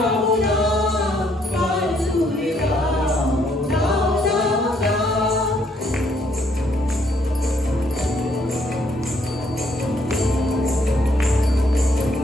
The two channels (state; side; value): normal; both; correlation 0.69